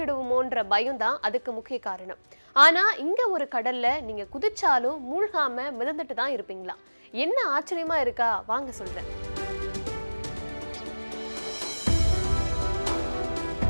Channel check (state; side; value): inverted; both; correlation -1.00